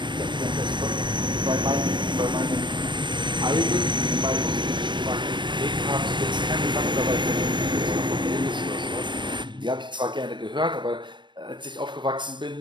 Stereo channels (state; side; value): late; left; 0.22 ms